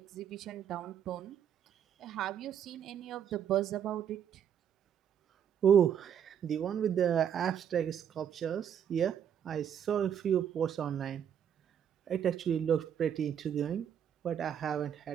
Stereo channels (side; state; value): left; quieter; 8.8 dB